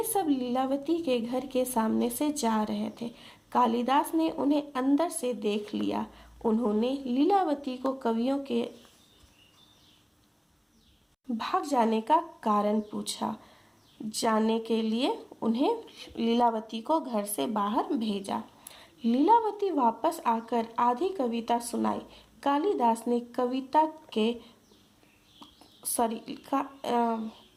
सब लीलावती के घर के सामने से जा रहे थे। कालिदास ने उन्हें अंदर से देख लिया। उन्होंने लीलावती को कवियों के भाग जाने का कारण पूछा। जानने के लिए उन्हें लीलावती को घर से बाहर भेजा। लीलावती वापस आकर आधी कविता सुनाई।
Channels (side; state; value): both; identical; correlation 1.00